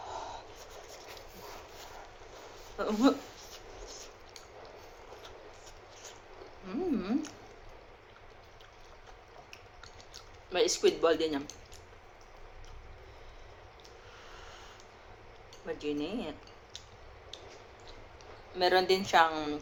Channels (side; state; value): both; identical; correlation 1.00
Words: May squid ball din yan. Maginit. Meron din siyang,